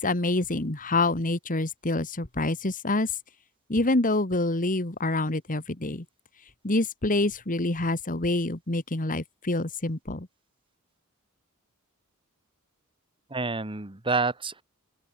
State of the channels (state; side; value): normal; both; correlation 0.39